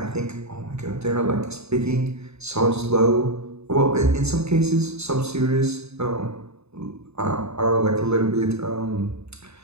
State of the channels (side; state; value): left; late; 0.80 ms